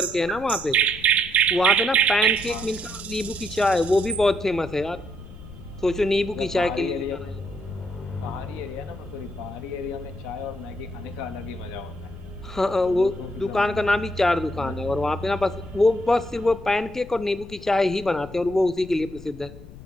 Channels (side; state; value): left; noise; rumble, 17 dB below the sound